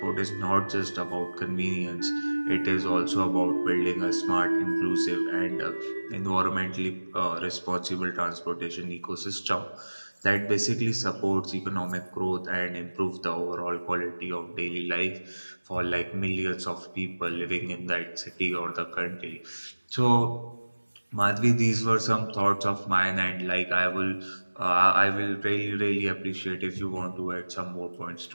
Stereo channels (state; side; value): inverted; both; correlation -1.00